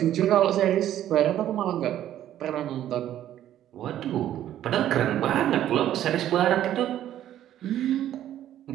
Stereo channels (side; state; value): left; quieter; 11.9 dB